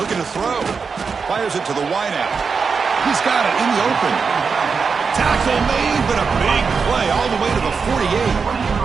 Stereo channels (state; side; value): quieter; left; 5.3 dB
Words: to throw. Fires it to the wideout. He's got it in the open. Tackle made, but a big play all the way to the 48.